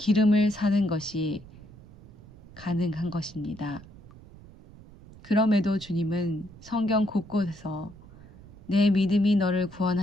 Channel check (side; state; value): right; noise; rumble, 21 dB below the sound